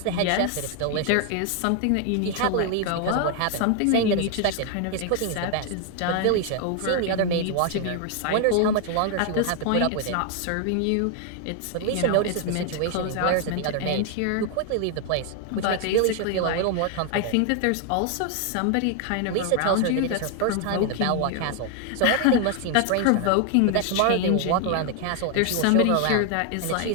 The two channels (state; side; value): different; both; correlation 0.00